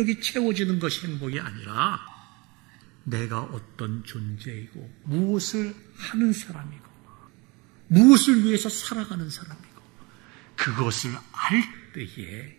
채워지는 것이 행복이 아니라 내가 어떤 존재이고 무엇을 하는 사람이고 무엇을 위해서 살아가는 사람이고 그것을 알 때에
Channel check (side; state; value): left; quieter; 26.4 dB